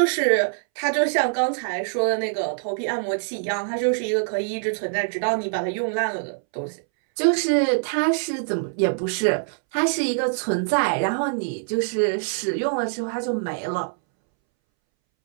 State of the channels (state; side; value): silent; left; 63 dB below the other